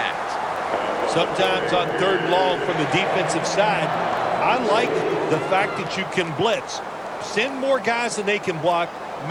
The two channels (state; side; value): identical; both; correlation 1.00